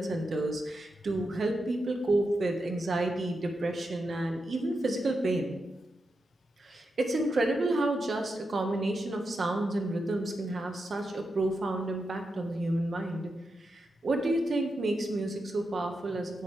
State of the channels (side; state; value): both; normal; correlation 0.87